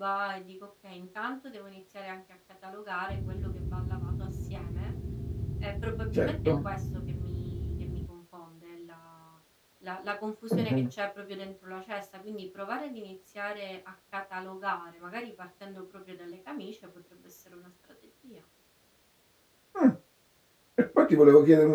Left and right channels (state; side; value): identical; both; correlation 1.00